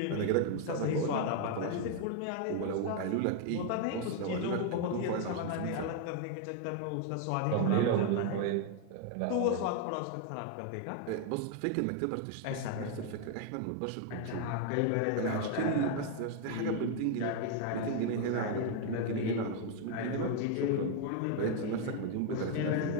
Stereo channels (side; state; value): both; different; correlation 0.00